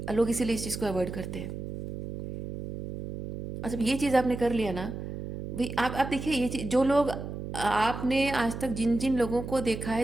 लोग इसीलिए इस चीज़ को अवॉइड करते हैं। और जब ये चीज़ आपने कर लिया ना भाई, आप देखिए, ये चीज़, जो लोग, आपने आज तक जिन जिन लोगों को देखा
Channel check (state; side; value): noise; right; hum, 8 dB below the sound